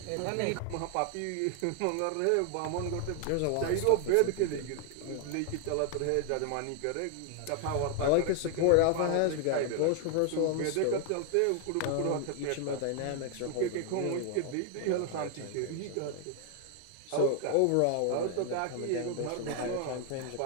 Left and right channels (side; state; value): both; different; correlation 0.00